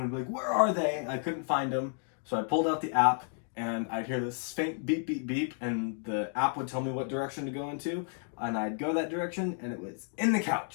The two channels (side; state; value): right; silent; 57 dB below the other